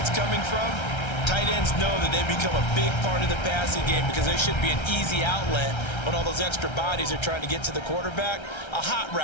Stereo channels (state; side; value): late; right; 1.3 ms